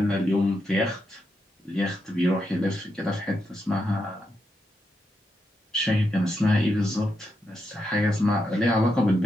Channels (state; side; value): normal; both; correlation 0.83